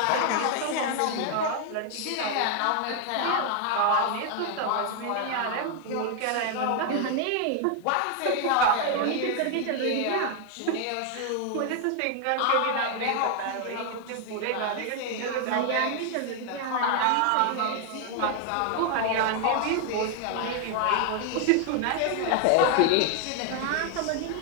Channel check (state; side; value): different; both; correlation 0.00